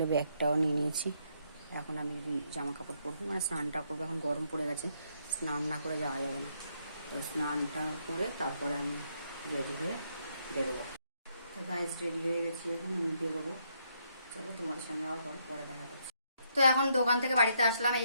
ব্যাগটাও নিয়ে নিয়েছি। এখন আমি জামা কাপড় পরবো, মানে স্নানটা করবো। এখন গরম পড়ে গেছে, স্নান না করে যাওয়া যাবে না। তো স্নানটা করে তারপরে আমি রেডি হয়ে বেরোবো। তো গাইজ রেডি হয়ে গেছি, এখন আমি বেরোবো। চলো তোমাদের সঙ্গে আবার পরে দেখা করছি। তো এখন দোকান থেকে বাড়িতে আসলাম,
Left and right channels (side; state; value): both; inverted; correlation -0.74